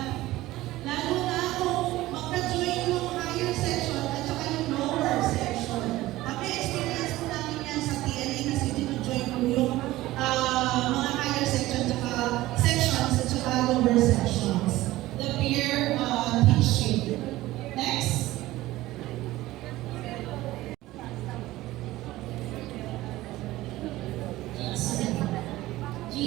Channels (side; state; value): left; quieter; 17.1 dB